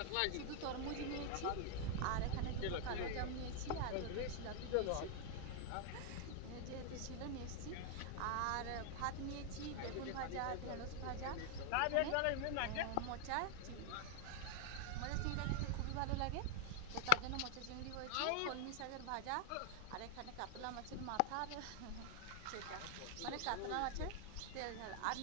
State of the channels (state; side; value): different; both; correlation 0.00